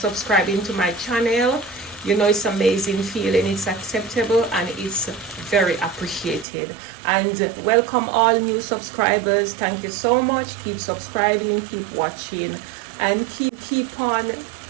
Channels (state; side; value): drops out; left; at 6.5 s